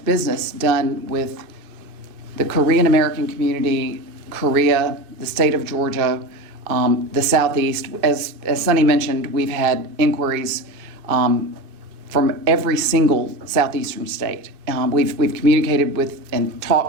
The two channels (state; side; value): late; left; 2.5 ms